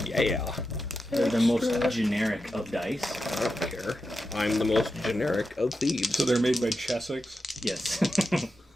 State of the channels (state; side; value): normal; both; correlation 0.89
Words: Yeah. They're the most generic of dice. I don't care. I'm the most generic of thieves. So they're made by Chessex. Yes.